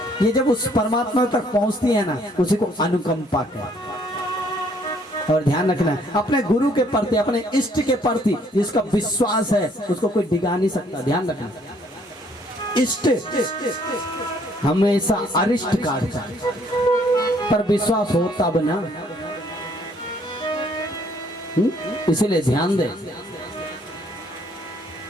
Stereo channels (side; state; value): both; normal; correlation 0.64